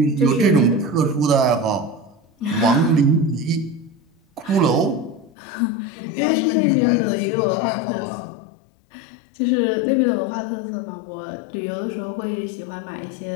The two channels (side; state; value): right; drops out; at 5.3 s